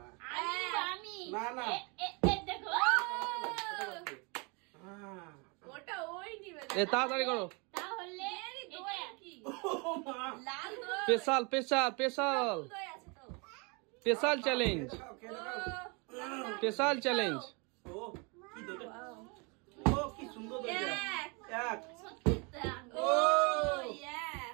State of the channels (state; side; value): quieter; left; 31.2 dB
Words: না। আমি না না দেখো ওটা ওই নিবে এ তাড়াতাড়ি করো। তাহলে দই কি ও মা লাল দই স্পেশাল দই আছে তো স্পেশাল চ্যালেঞ্জ স্পেশাল চ্যালেঞ্জ। ও কি দইটা, ও কি সুন্দর দইটা। এক সত্যি তা। ও